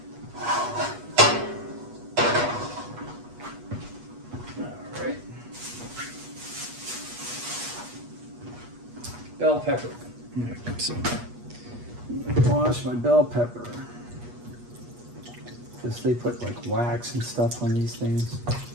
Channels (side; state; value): left; late; 8.3 ms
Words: Alright. Bell pepper. Alright, so I wash my bell pepper. Because they put like wax and stuff on these things.